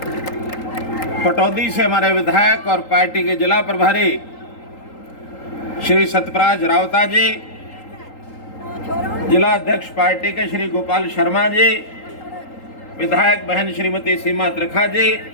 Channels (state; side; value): late; right; 3.8 ms